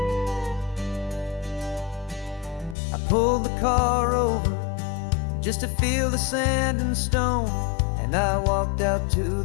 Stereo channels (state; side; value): drops out; right; at 2.8 s